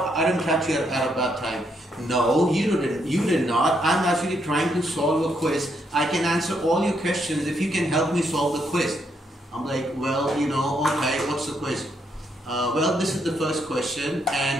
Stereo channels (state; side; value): normal; both; correlation 0.76